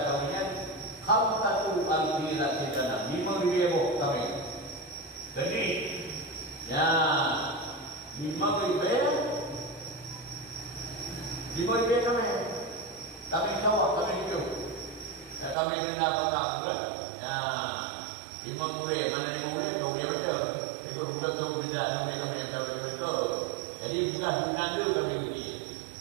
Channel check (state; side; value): drops out; left; at 15.6 s